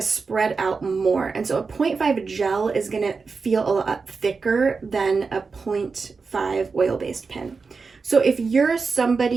spread out more, and so a 0.5 gel is going to feel a lot thicker than a 0.5 oil-based pen. So if you're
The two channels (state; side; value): quieter; left; 4.7 dB